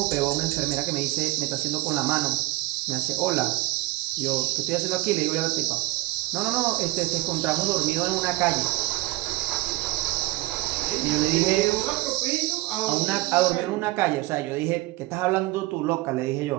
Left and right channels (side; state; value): left; quieter; 19.9 dB